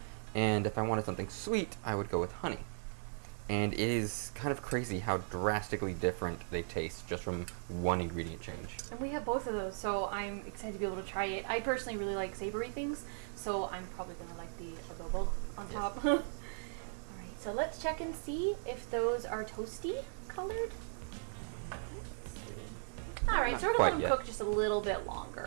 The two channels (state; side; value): silent; left; digital silence